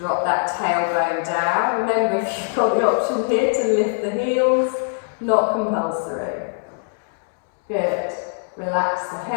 that tailbone down. Remember, if you've got the option here to lift the heels, not compulsory. Good. Relax the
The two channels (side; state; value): right; silent; digital silence